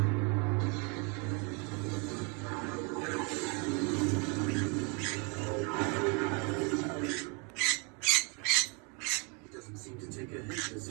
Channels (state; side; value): quieter; left; 33.5 dB